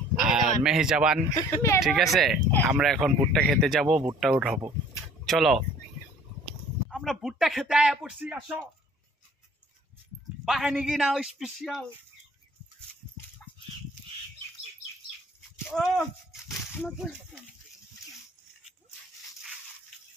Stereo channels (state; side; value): normal; both; correlation 0.53